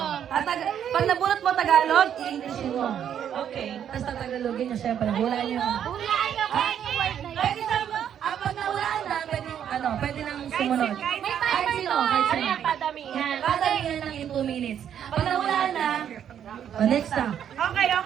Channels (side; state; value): left; quieter; 9.3 dB